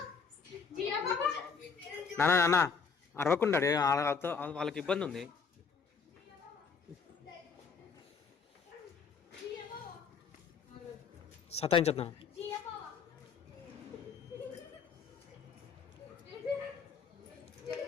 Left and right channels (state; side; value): quieter; right; 5.6 dB